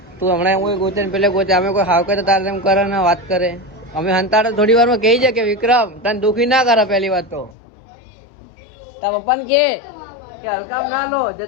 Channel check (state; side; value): drops out; right; at 7.6 s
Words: તું હમણાં કોઈ ગોતે ને પેલે ગોતે, અમે કોઈ હાવ કરે તારે એમ કરે ને વાત કરે. અમે હંતાડે થોડી વાર માં કહી જાય કે વિક્રમ તને દુખી ના કરે. પહેલી વાત તો તાર પપ્પાને કે હલકામ ના લો,